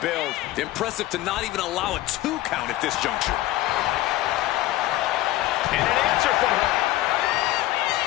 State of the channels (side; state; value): right; quieter; 16.2 dB